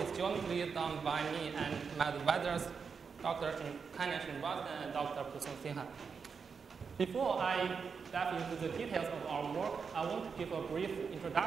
jointly done by me and my advisors, Dr. Kailash Srinivasan and Dr. Pusung Sinha. Before I dive into the details of our work, I want to give a brief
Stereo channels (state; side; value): quieter; left; 5.7 dB